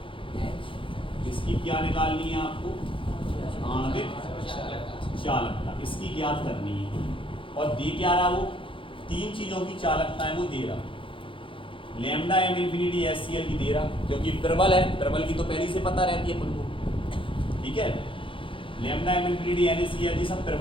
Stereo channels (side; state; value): right; late; 0.25 ms